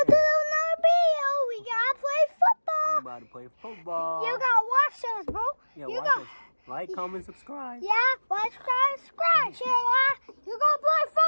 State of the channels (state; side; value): inverted; both; correlation -1.00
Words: to another video. We gotta play football. We're about to play football. You gotta watch us, bro. Yeah, you watch us. Like, comment, subscribe. Yeah, like, subscribe, share, like. You gonna play